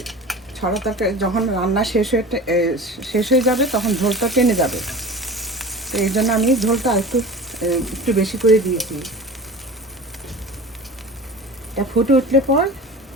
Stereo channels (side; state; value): both; normal; correlation 0.36